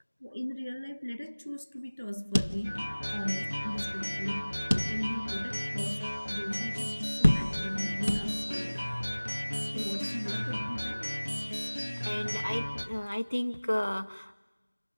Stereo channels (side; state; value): both; inverted; correlation -1.00